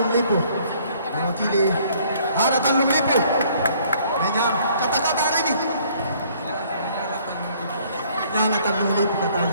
Lipu mewakili. Ada Tanjung Lipu. Kata-kata hari ini menyala Tanjung Lipu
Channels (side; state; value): both; inverted; correlation -0.60